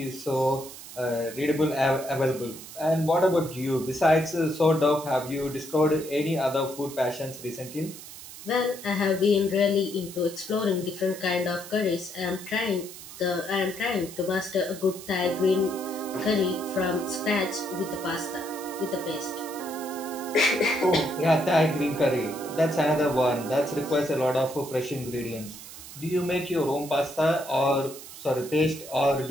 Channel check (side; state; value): right; noise; hiss, 14 dB below the sound